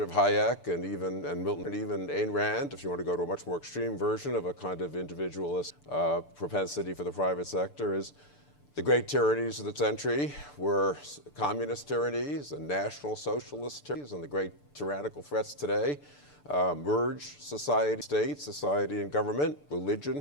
Hayek and Milton and even Ayn Rand, if you want to go to a much more extreme version of a kind of individualist propensity for the private sector, is The great tyrannies of the century were communist tyrannies and national socialist tyrannies, and the great tyrannical threats today merge society and government,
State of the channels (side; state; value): right; late; 6.8 ms